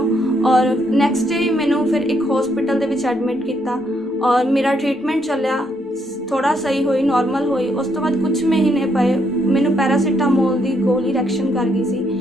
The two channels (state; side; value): normal; both; correlation 0.74